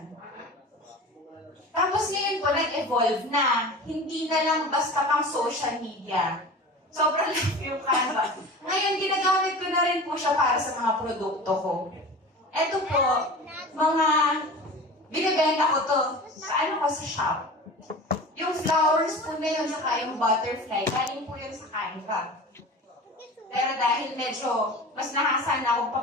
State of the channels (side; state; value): both; normal; correlation 0.35